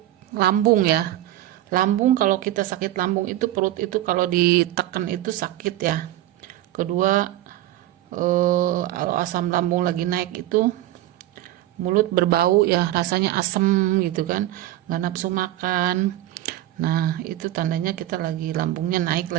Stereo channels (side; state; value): left; quieter; 14.3 dB